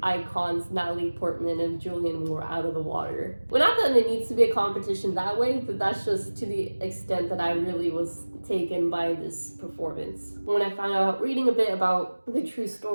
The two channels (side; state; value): both; inverted; correlation -1.00